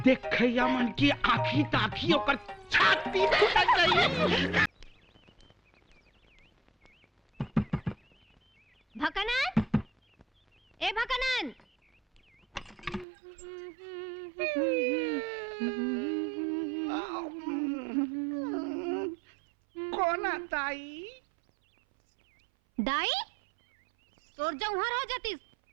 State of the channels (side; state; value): left; drops out; at 13.1 s